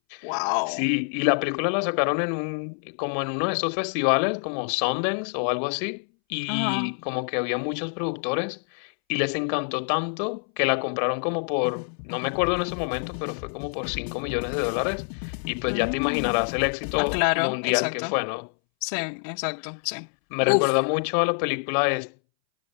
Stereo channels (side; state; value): right; silent; 61 dB below the other